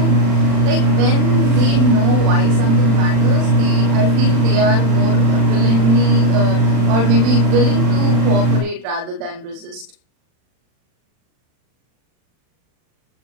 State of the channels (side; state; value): left; late; 40 ms